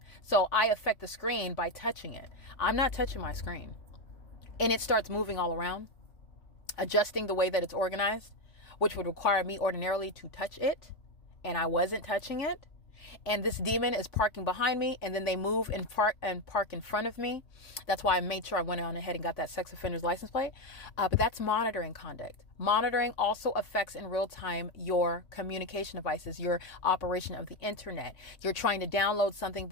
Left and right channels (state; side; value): late; right; 3.5 ms